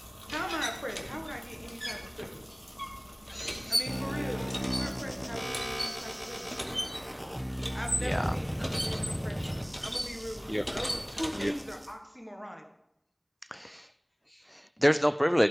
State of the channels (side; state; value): both; identical; correlation 1.00